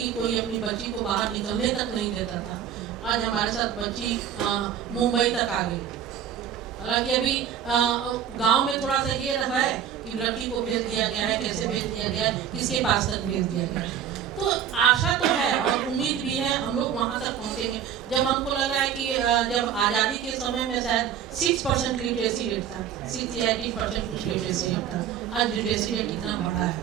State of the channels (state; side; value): quieter; left; 9.2 dB